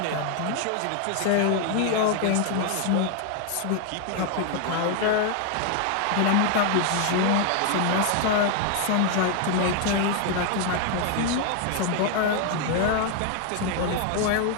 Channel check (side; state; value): both; different; correlation 0.00